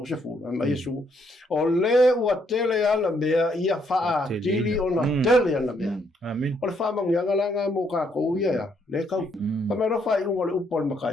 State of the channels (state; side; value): normal; both; correlation 0.72